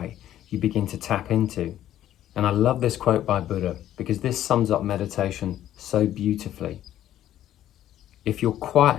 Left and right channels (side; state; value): right; quieter; 12.1 dB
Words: you begin to tap into. And I love this quote by Buddha because this sums up meditation so beautifully. If you're quiet